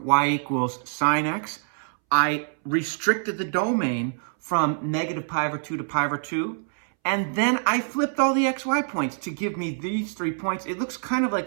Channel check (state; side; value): silent; left; 62 dB below the other